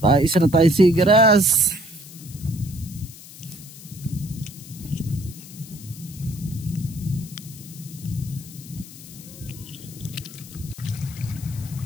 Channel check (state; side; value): noise; left; hiss, 17 dB below the sound